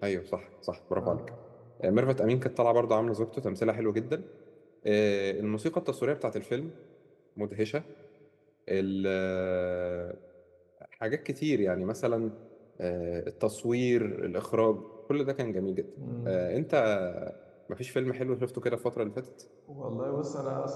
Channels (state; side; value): identical; both; correlation 1.00